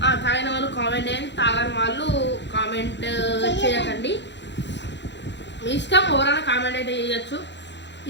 తాగిన వాళ్ళు కామెంట్ చేయండి, తాగని వాళ్ళు కామెంట్ చేయకండి. మీ ఇష్టం, ఎవరైనా కామెంట్ అయితే చేయొచ్చు.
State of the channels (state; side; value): late; right; 0.52 ms